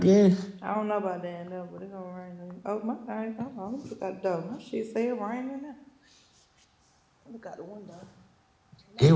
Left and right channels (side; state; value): both; identical; correlation 1.00